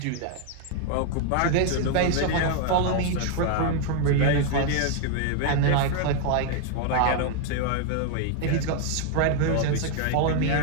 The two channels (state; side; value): different; both; correlation 0.00